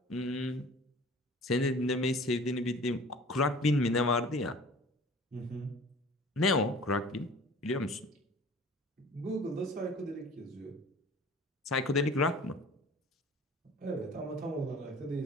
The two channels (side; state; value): both; normal; correlation 0.45